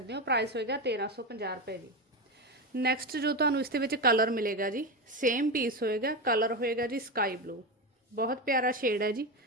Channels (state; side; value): normal; both; correlation 0.16